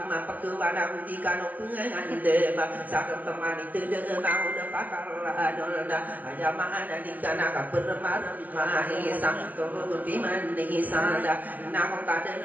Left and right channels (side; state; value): left; late; 0.082 ms